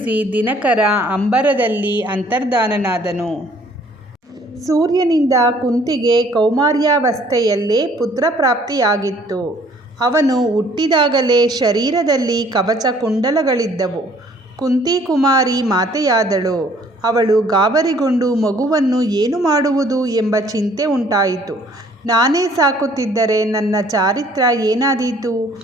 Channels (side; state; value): both; normal; correlation 0.58